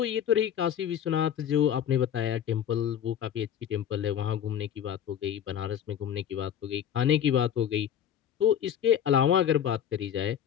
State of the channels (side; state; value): right; quieter; 9.5 dB